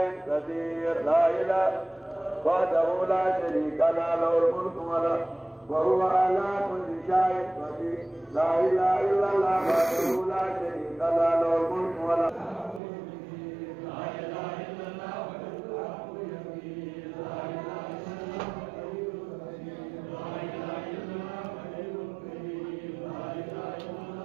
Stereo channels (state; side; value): drops out; left; at 12.8 s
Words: قدير لا إله وحده لا شريك له الملك وهو على كل شيء قدير لا إله إلا الله وحده لا شريك له الملك لا إله إلا الله